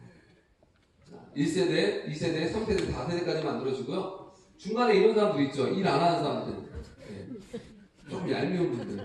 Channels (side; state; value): both; identical; correlation 1.00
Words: 1세대, 2세대, 3세대, 4세대까지 만들어지고요. 중간에 이런 사람들 있죠. 일 안 하는 사람들. 네. 좀 얄미운